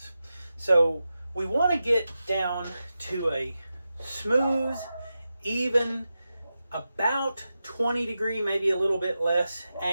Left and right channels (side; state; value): both; inverted; correlation -0.91